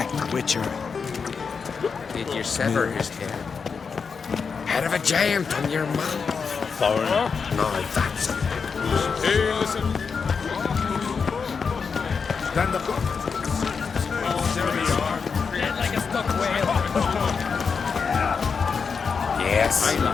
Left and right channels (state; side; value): quieter; right; 5.6 dB